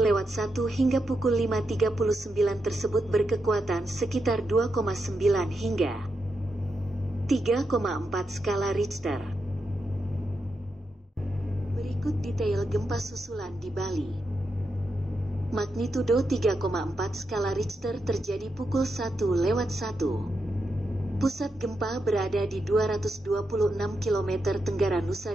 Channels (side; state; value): both; normal; correlation 0.85